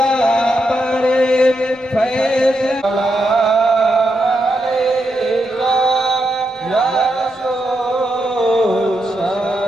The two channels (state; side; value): normal; both; correlation 0.83